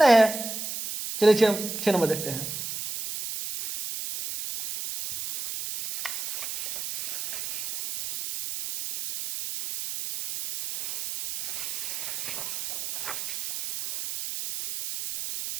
है। चलिए 6 नंबर देखते हैं।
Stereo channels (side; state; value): right; noise; hiss, 5 dB below the sound